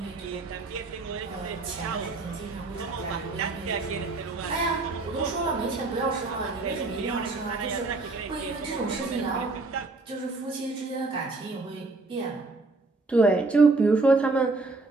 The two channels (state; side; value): quieter; left; 3.5 dB